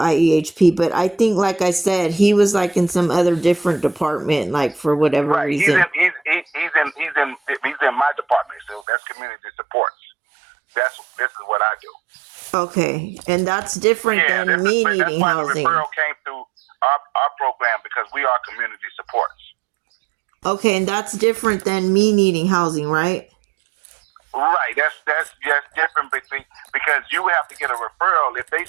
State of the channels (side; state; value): left; drops out; at 8.8 s